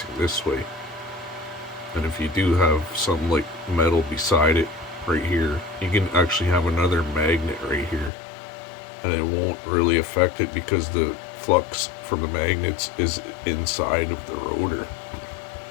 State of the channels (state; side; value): drops out; right; at 8.1 s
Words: this way. And if you do have something like metal beside it right here, you can actually have another magnet right here, and it won't really affect it because the flux from the magnets is inside of the rotor